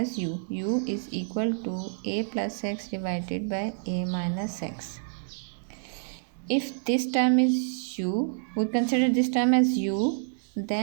u. U is equal to a plus x divided by a minus x. If this term is u, we consider this term as u,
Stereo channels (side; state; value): left; silent; digital silence